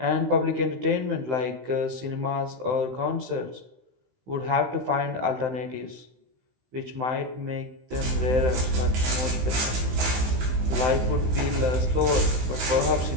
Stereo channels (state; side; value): late; left; 16 ms